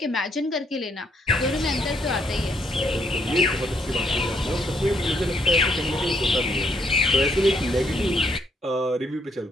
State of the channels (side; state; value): both; normal; correlation 0.71